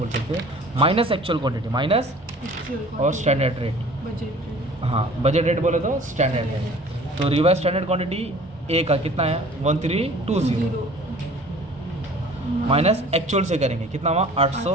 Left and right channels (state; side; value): normal; both; correlation 0.48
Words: सकते हैं, माइनस एक्चुअल क्वांटिटी, माइनस और स्टैंडर्ड रेट। बजट, हाँ, बजट रेट बोले तो स्टैंडर्ड रेट। तो रिवाइज स्टैंडर्ड क्वांटिटी ए का कितना है? 1320 माइनस एक्चुअल से करेंगे कितना हुआ?